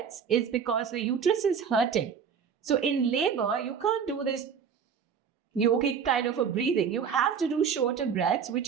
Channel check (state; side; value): quieter; left; 7.0 dB